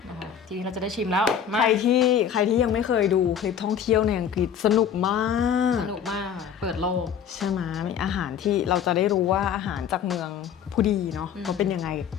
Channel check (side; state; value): right; quieter; 8.2 dB